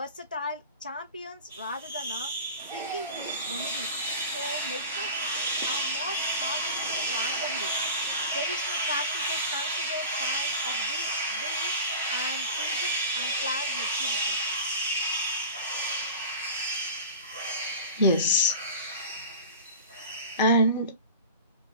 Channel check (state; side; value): inverted; both; correlation -0.35